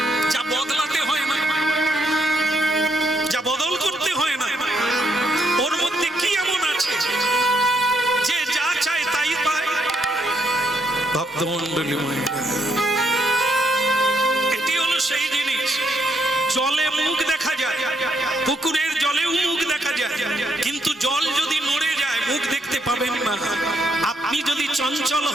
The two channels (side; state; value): both; normal; correlation 0.75